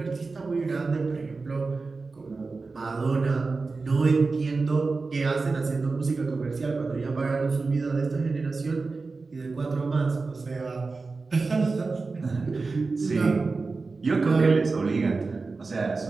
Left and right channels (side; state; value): left; quieter; 4.0 dB